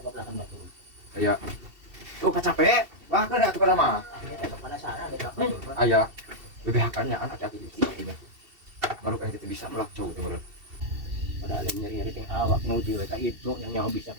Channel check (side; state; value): left; late; 2.7 ms